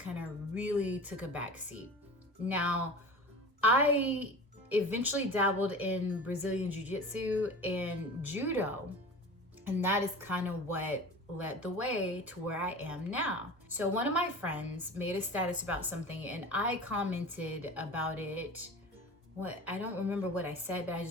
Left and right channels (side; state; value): both; normal; correlation 0.35